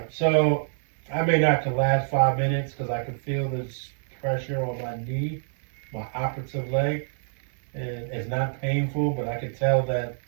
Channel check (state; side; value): silent; left; digital silence